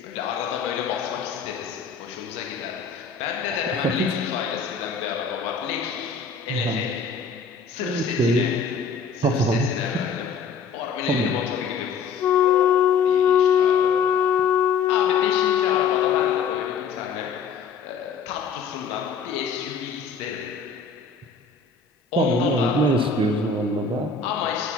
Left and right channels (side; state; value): right; quieter; 5.3 dB